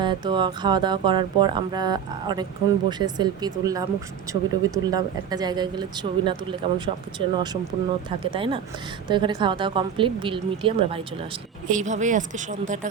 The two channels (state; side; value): quieter; left; 8.0 dB